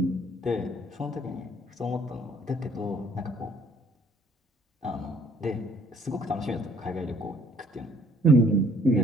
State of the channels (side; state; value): both; normal; correlation 0.61